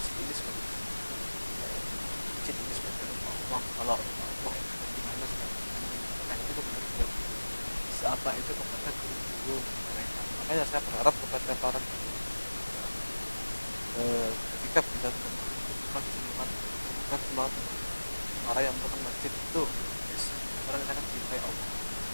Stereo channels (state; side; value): inverted; both; correlation -1.00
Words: ini sebagai ini sebagai Allah. Kalau Allah itu gimana sekarang? Nah, itu kepada apa itu kepada guru-guru mereka.